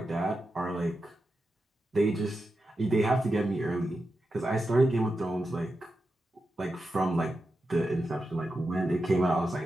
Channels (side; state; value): both; normal; correlation 0.89